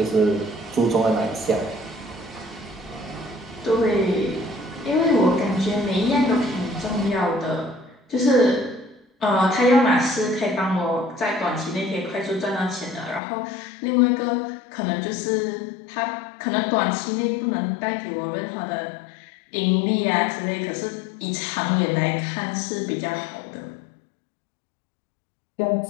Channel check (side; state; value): right; drops out; at 13.2 s